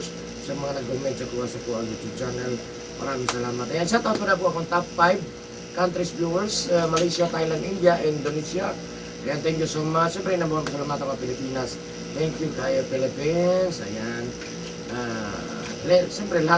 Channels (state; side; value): identical; both; correlation 1.00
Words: sa mga nag-comment sa kuha YouTube channel. Maraming salamat. Ayan, shout out po na po akong top 5 countries viewers, Malaysia, Thailand, India, Indonesia. Ayan, thank you so much. Siyempre, nabuhang salamat ako Pilipinas. Thank you kayo Philippines. Ayan. Siyempre,